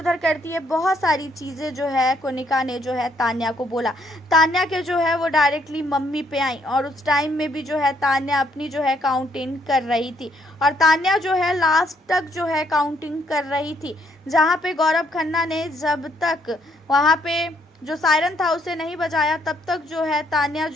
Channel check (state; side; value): normal; both; correlation 0.70